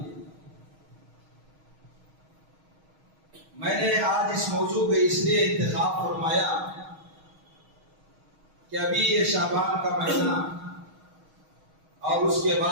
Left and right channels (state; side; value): late; left; 6.4 ms